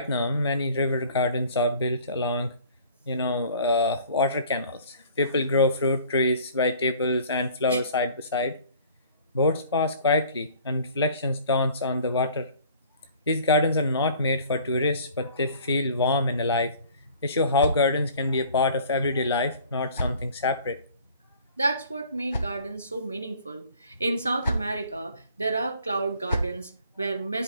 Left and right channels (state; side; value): inverted; both; correlation -0.51